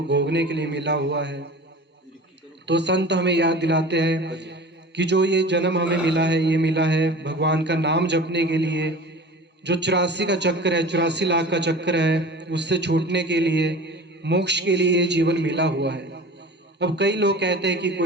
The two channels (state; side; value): normal; both; correlation 0.38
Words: भोगने के लिए मिला हुआ है। तो संत हमें याद दिलाते हैं कि जो ये जन्म हमें मिला है, ये मिला है भगवान का नाम जपने के लिए। जो 84 का चक्कर है, 84 लाख का चक्कर है, उससे छूटने के लिए, मोक्ष के लिए ये जीवन मिला हुआ है। अब कई लोग कहते हैं कि